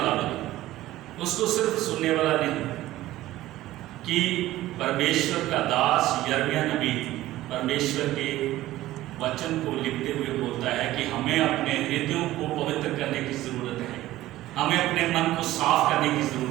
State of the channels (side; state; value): left; quieter; 15.7 dB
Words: बने, उसको सिर्फ सुनने वाला नहीं। कि परमेश्वर का दास यिर्मयाह नबी परमेश्वर के वचन को लिखते हुए बोलता है कि हमें अपने हृदयों को पवित्र करने की जरूरत है, हमें अपने मन को साफ करने की